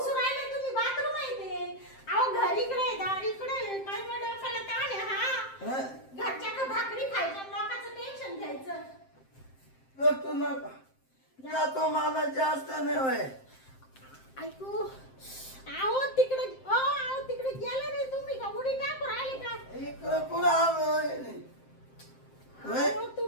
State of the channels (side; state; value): right; late; 7.6 ms